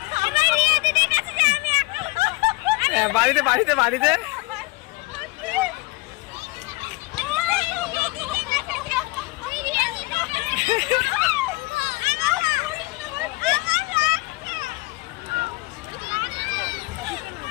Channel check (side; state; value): right; quieter; 23.6 dB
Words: বাড়িতে বাড়িতে বাড়িতে